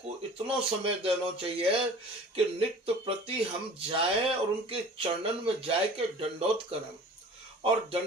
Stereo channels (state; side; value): normal; both; correlation 0.44